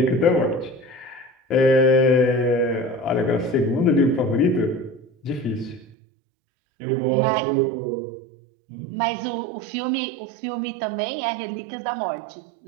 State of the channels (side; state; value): left; drops out; at 5.9 s